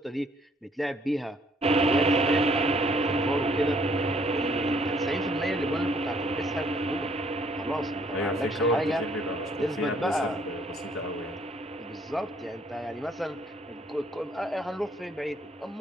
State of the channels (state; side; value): normal; both; correlation 0.64